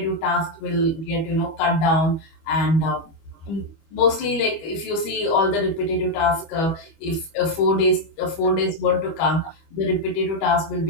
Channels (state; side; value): late; right; 25 ms